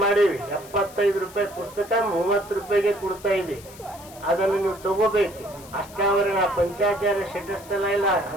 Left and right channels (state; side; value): noise; left; hiss, 20 dB below the sound